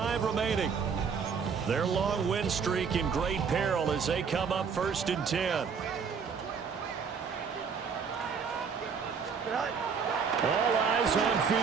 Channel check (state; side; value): quieter; left; 6.1 dB